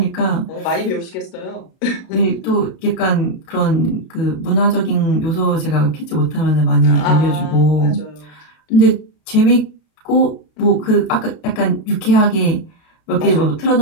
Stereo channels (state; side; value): late; right; 33 ms